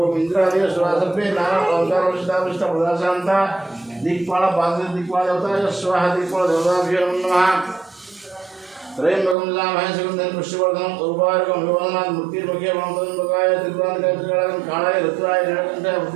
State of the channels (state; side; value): drops out; left; at 9.3 s